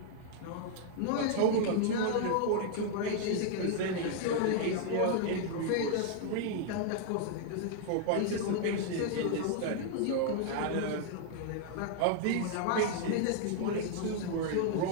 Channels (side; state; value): both; different; correlation 0.00